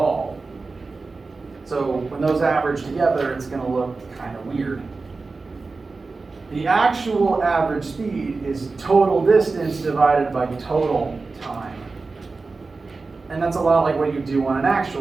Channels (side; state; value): left; quieter; 4.0 dB